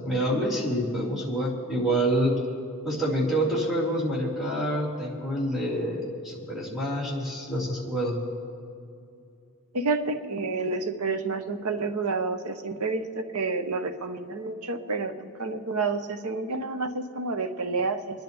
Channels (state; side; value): normal; both; correlation 0.24